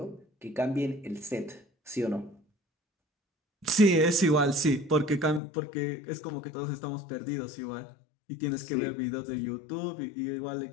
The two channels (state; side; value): drops out; right; at 5.4 s